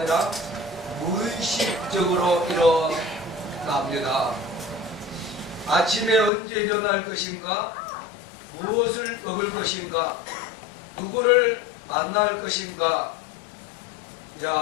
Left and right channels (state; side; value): drops out; right; at 6.3 s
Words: 무의식적으로 일어납니다. 아침에 언제 일어날 것인가, 무엇을 먹을 것인가, 누구를 만날 것인가,